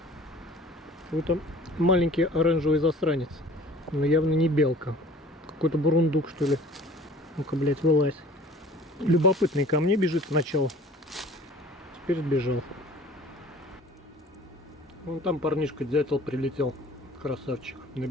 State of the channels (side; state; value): both; normal; correlation 0.48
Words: Вот там маленький оранжевый засранец. Но явно не белка. Какой-то бурундук, что ли. Ну-ка, блядь, вылазь. Любопытный ко мне бежит сначала. Теперь сбежал. Вон там парнишка дятел прилетел. Красавчик. На